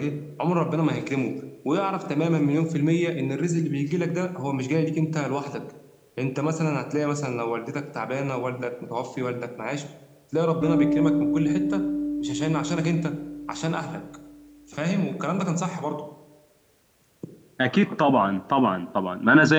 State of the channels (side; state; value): both; identical; correlation 1.00